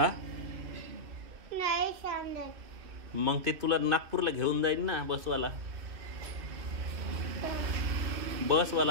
मग ते तुला नागपूरला घेऊन जाईल ना बसवाला.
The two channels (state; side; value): late; left; 2.6 ms